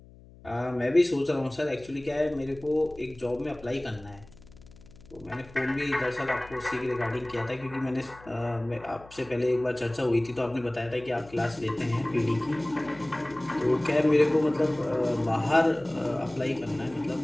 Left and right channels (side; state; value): left; noise; hum, 22 dB below the sound